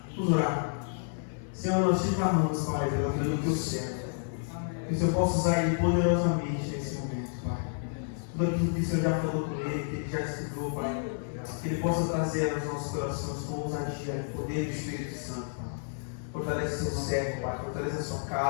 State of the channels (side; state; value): right; silent; 58 dB below the other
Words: Vamos orar. Senhor, nós te clamamos, Pai, pela vida do teu servo. Que o Senhor possa usar ele poderosamente nesse momento, Pai. Tudo aquilo que o Senhor já falou com ele, que ele já estudou, Pai. Que ele possa trazer aos nossos corações com ousadia e poder do Espírito Santo, Pai. Fortalece seu servo, Pai. Fortalece a sua